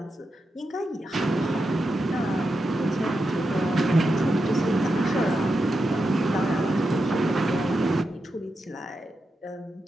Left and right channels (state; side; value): normal; both; correlation 0.88